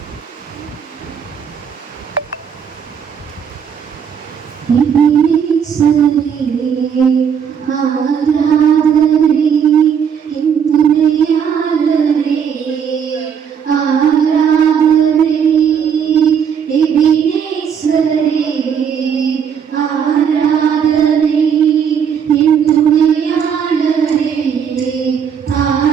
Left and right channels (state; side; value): quieter; left; 7.5 dB